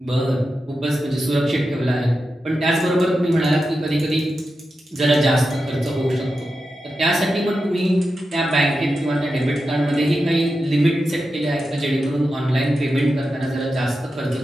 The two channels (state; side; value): normal; both; correlation 0.90